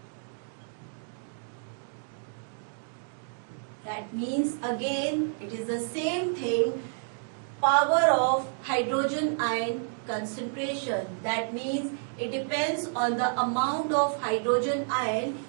That means again it is the same thing, power of hydrogen ion concentration. That means it depends on the amount of hydrogen ion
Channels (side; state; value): left; silent; digital silence